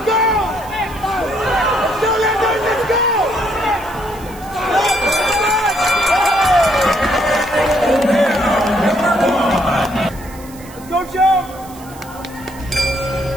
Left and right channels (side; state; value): right; noise; hiss, 21 dB below the sound